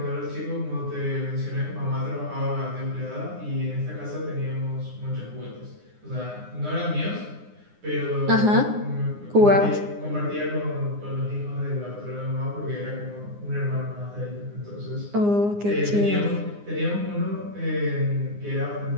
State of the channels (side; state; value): left; late; 9.7 ms